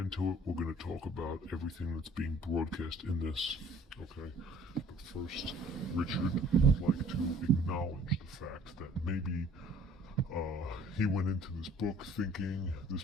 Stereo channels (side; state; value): both; normal; correlation 0.54